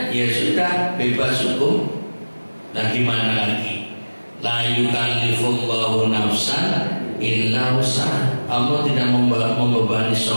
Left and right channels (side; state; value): both; inverted; correlation -1.00